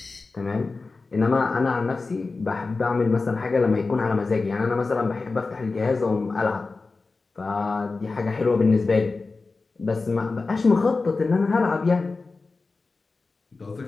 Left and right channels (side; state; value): right; quieter; 3.9 dB